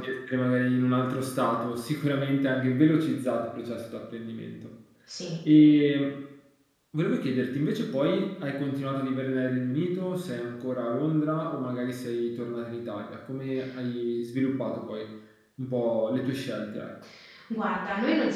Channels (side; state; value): both; identical; correlation 1.00